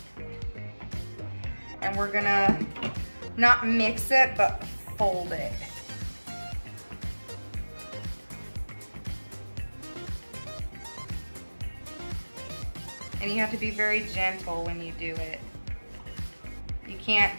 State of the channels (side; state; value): both; inverted; correlation -1.00